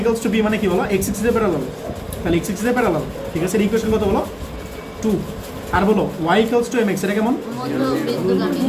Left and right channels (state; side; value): identical; both; correlation 1.00